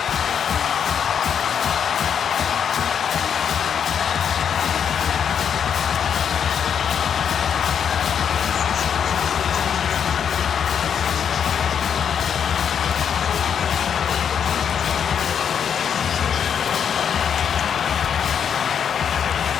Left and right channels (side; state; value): right; quieter; 7.8 dB